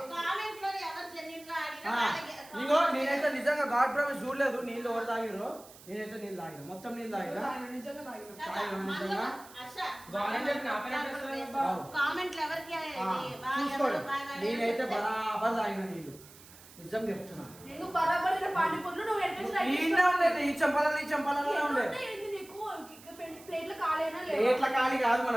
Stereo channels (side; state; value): right; noise; hiss, 21 dB below the sound